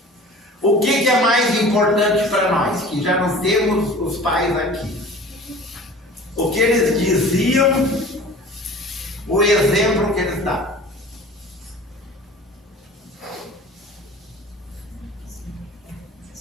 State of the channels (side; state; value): both; normal; correlation 0.42